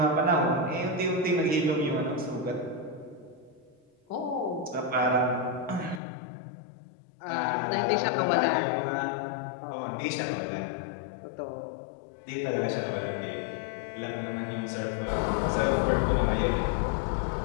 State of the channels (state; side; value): drops out; right; at 6.0 s